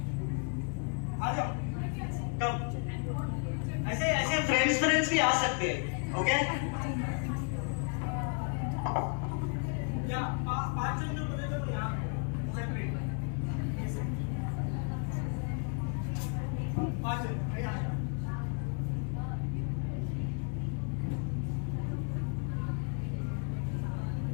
आ जाओ. Come. ऐसे फ्रेंड्स भी आ सकते हैं. ओके? या 5 जन जो बोले तो यहाँ सेपरेट. 5 जन.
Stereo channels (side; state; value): right; quieter; 39.5 dB